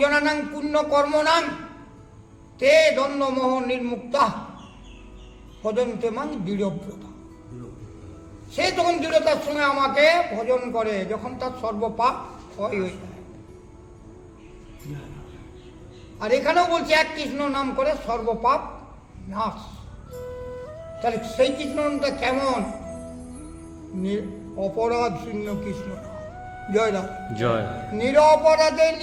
জনানাং পুণ্য কর্মনাং তে দ্বন্দ্ব মোহ নির্মুক্তা ভজন্তে মাং দৃঢ়ব্রতা। সে তখন দৃঢ়তার সঙ্গে আমাকে ভজন করে যখন তার সর্বপাপ ক্ষয় হয়ে যায়। আর এখানেও বলছে এক কৃষ্ণ নাম করে সর্বপাপ নাশ। তাহলে সেই কৃষ্ণ নামটা কেমন? অপরাধ শূন্য কৃষ্ণ নাম। জয় রাম জয়। নিরপরাধে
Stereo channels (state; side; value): identical; both; correlation 1.00